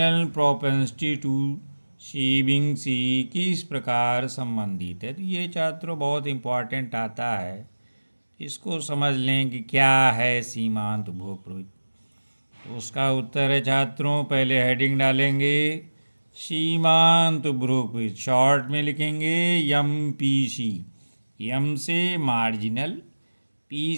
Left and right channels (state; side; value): inverted; both; correlation -1.00